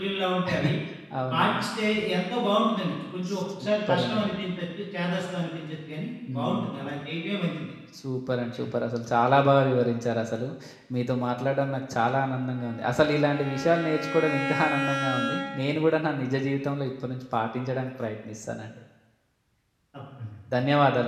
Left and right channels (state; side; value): identical; both; correlation 1.00